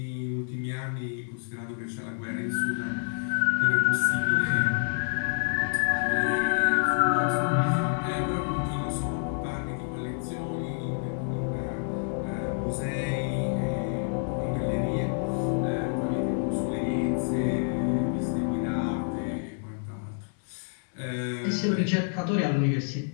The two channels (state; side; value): silent; right; 59 dB below the other